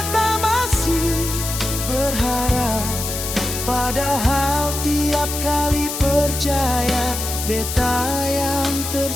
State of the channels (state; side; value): noise; left; hiss, 5 dB below the sound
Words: masih berharap. Padahal tiap kali percaya, beta yang